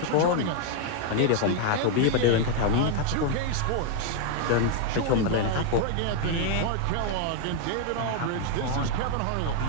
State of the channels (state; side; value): different; both; correlation 0.00